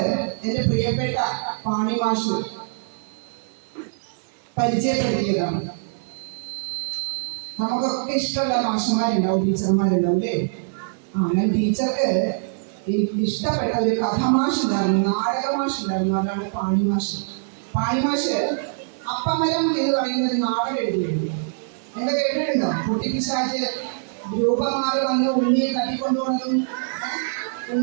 എൻ്റെ പ്രിയപ്പെട്ട പാണി മാഷ് പരിചയപ്പെടുത്തിയതാണ്. നമുക്കൊക്കെ ഇഷ്ടമുള്ള മാഷന്മാരുണ്ടാവും, ടീച്ചർമാരുണ്ടാവും അല്ലേ? ഞാൻ ടീച്ചർക്ക് ഇഷ്ടപ്പെട്ട ഒരു കഥമാഷ് ഉണ്ടായിരുന്നു, നാടകമാഷ് ഉണ്ടായിരുന്നു. അതാണ് പാണി മാഷ്. പാണി മാഷ് അപ്പമരം എന്ന് പറയുന്ന ഒരു നാടകം എഴുതിയിരുന്നു. നിങ്ങൾ കേട്ടിട്ടുണ്ടോ? കുട്ടിപ്പിശാച് രൂപം മാറി വന്ന് ഉണ്ണിയെ തട്ടിക്കൊണ്ടുപോകുന്നതും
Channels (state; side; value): silent; left; 57 dB below the other